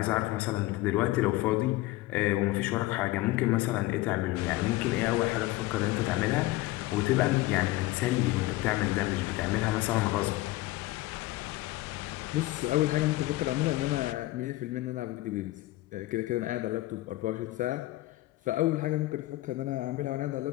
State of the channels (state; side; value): quieter; right; 18.2 dB